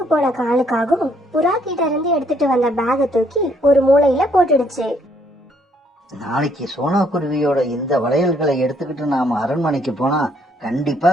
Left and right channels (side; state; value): both; normal; correlation 0.68